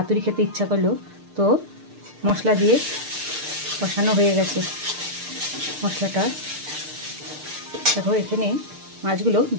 খেতে ইচ্ছা করলো, তো মশলা দিয়ে কষানো হয়ে গেছে। মশলাটা দেখো, এখানে মাছগুলো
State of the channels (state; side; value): late; left; 6.6 ms